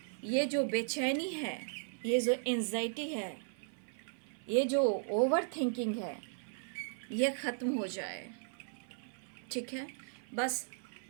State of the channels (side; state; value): left; silent; 53 dB below the other